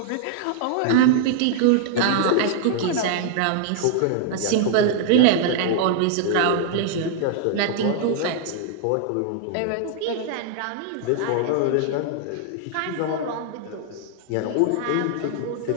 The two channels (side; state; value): both; different; correlation -0.01